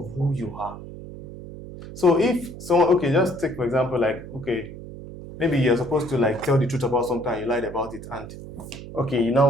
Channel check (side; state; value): right; noise; hum, 13 dB below the sound